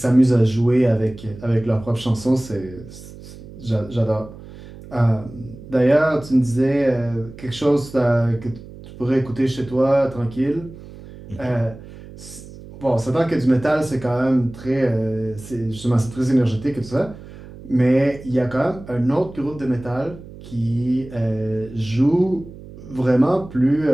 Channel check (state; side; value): noise; right; hum, 17 dB below the sound